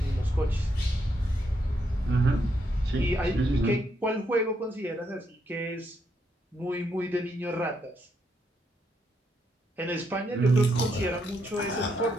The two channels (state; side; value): normal; both; correlation 0.78